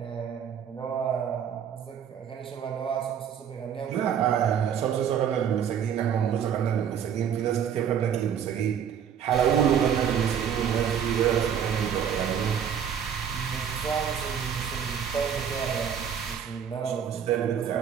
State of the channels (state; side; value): quieter; left; 8.3 dB